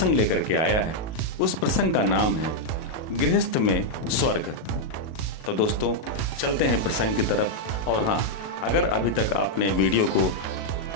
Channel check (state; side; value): late; right; 37 ms